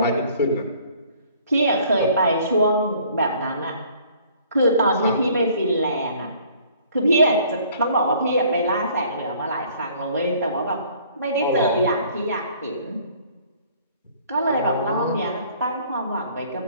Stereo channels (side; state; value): both; inverted; correlation -0.57